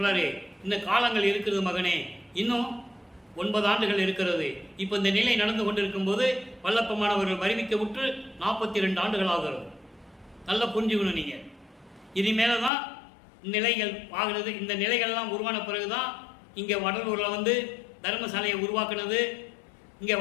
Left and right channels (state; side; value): drops out; right; at 12.7 s